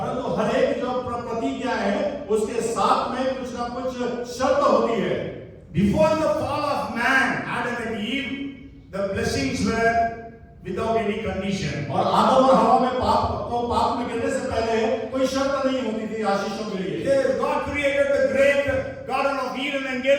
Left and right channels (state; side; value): identical; both; correlation 1.00